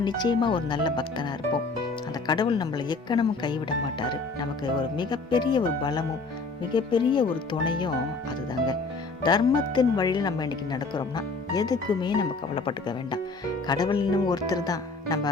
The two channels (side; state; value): right; quieter; 3.9 dB